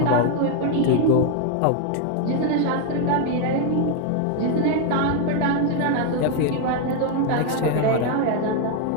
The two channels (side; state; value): both; different; correlation 0.01